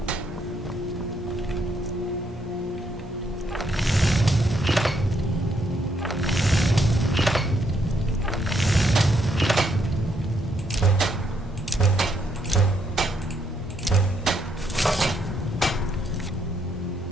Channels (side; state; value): both; normal; correlation 0.74